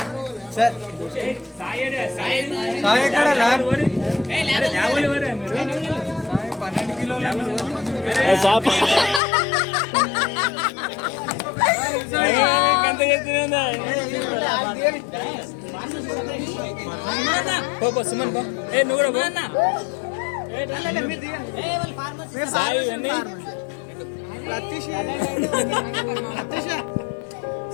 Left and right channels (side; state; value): right; drops out; at 9.2 s